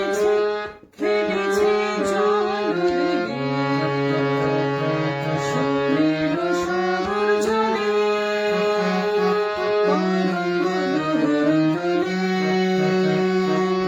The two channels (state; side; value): identical; both; correlation 1.00